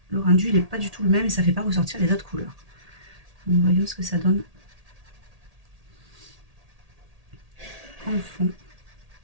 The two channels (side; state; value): left; late; 1.8 ms